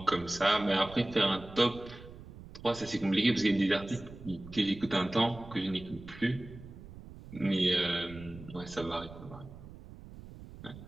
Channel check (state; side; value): noise; right; rumble, 16 dB below the sound